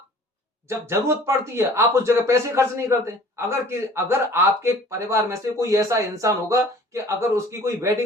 जब जरूरत पड़ती है आप उस जगह पैसे खर्च नहीं करते। अगर आपके परिवार में से कोई ऐसा इंसान होगा कि अगर उसकी कोई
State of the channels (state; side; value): normal; both; correlation 0.49